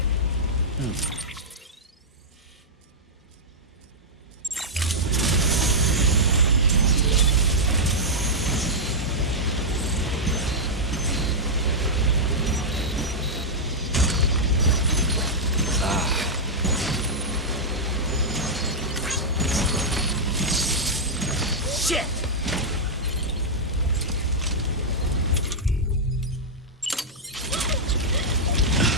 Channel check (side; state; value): both; normal; correlation -0.07